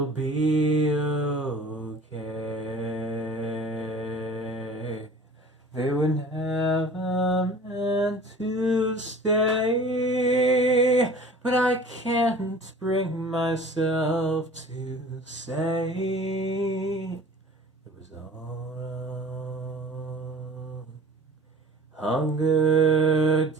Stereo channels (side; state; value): both; normal; correlation 0.44